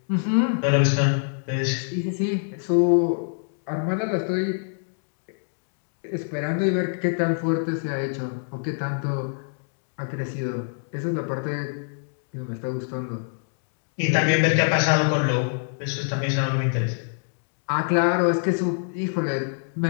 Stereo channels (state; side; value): silent; right; digital silence